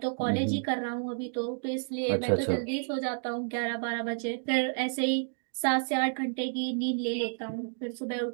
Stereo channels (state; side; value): silent; left; digital silence